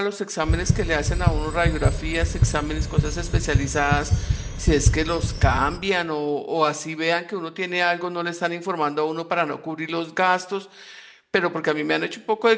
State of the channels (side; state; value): both; identical; correlation 1.00